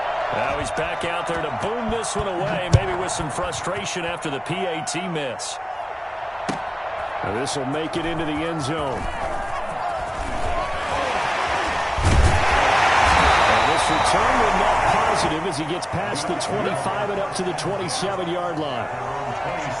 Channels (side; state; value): both; identical; correlation 1.00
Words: Now he's back out there to boom this one away, maybe with some frustration after the PAT miss. Now this will make it into the end zone. And this return will net positive as he gets past the 25 and up to the 27-yard line.